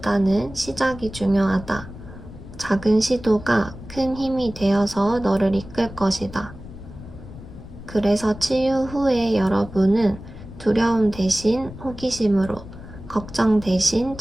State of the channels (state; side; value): noise; left; rumble, 15 dB below the sound